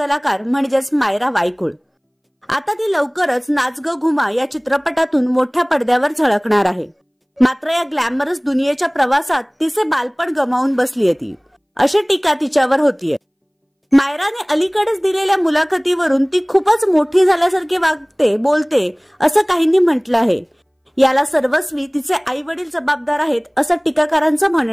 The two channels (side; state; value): both; identical; correlation 1.00